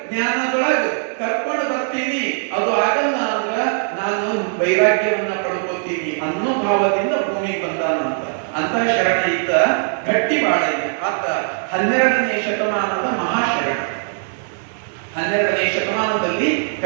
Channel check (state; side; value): silent; left; 64 dB below the other